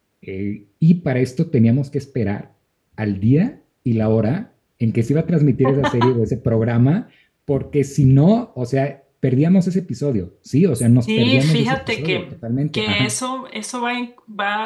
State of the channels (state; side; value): identical; both; correlation 1.00